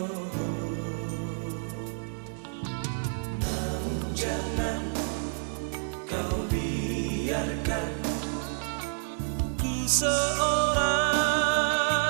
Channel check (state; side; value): silent; left; digital silence